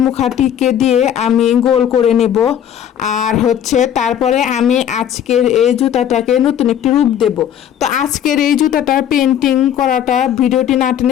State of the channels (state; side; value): quieter; right; 9.8 dB